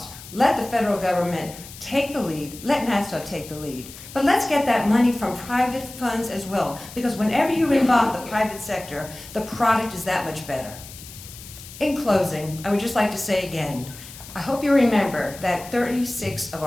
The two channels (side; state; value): left; noise; hiss, 16 dB below the sound